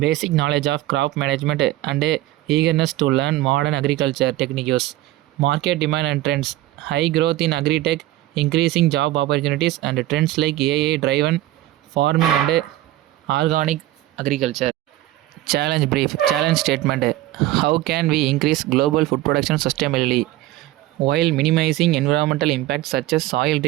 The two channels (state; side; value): quieter; left; 15.9 dB